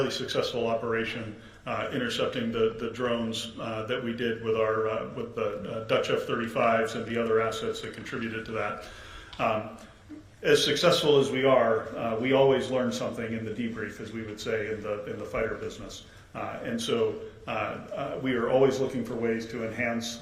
successful operation intercepting the drones that we did with the Dutch F-35s and the other assets that contributed to that. As successful as we are, we always learn something in the debrief, as we would say in the fighter business. And so we are always looking for ways to enhance,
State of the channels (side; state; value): both; identical; correlation 1.00